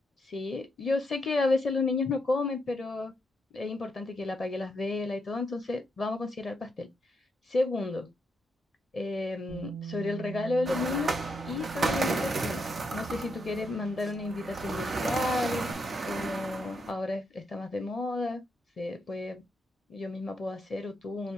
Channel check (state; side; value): normal; both; correlation 0.80